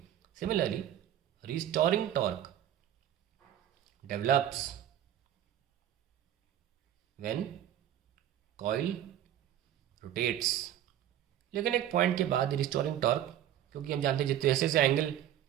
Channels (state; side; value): quieter; left; 11.3 dB